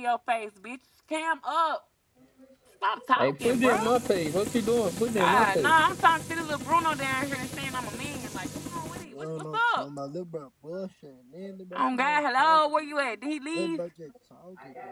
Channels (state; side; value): identical; both; correlation 1.00